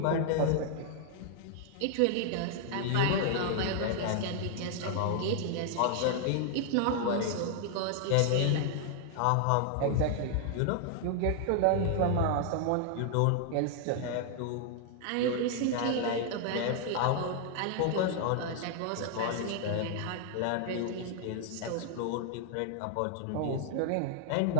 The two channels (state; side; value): different; both; correlation 0.00